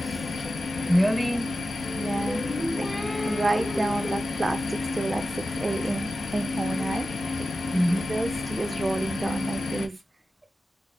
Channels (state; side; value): normal; both; correlation 0.93